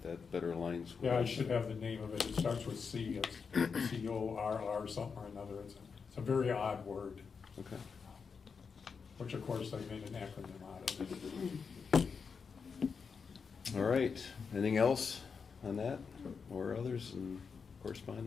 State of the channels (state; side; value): quieter; right; 5.6 dB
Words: that better aligns with. Yeah, I should have the name of it. It starts with C, it's CORR something or another. It's a very odd word, Okay. which of course they made an acronym out of it. All right. Anything else on that or others in